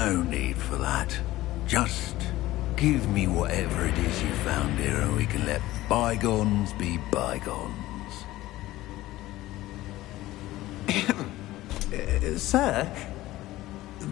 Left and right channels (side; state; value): right; quieter; 16.7 dB